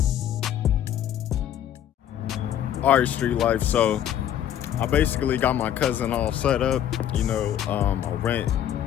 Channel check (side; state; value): right; quieter; 10.6 dB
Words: All right, Street Life. So I basically got my cousin all set up. You know, I